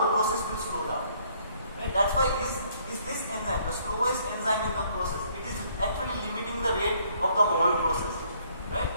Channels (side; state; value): both; inverted; correlation -0.65